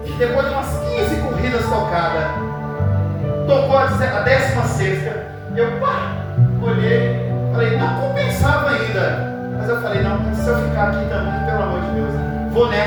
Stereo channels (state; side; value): identical; both; correlation 1.00